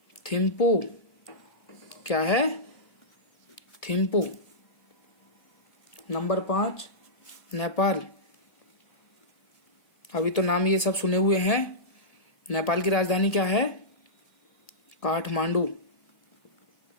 थिम्पू। क्या है? थिम्पू। नंबर 5, नेपाल। अभी तो नाम ये सब सुने हुए हैं। नेपाल की राजधानी क्या है? काठमांडू।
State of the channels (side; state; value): right; late; 1.8 ms